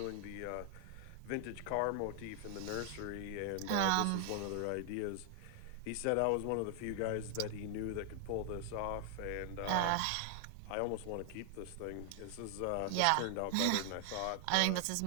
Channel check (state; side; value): different; both; correlation 0.00